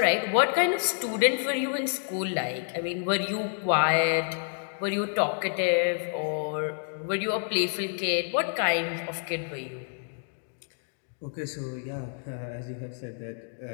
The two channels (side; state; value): right; silent; digital silence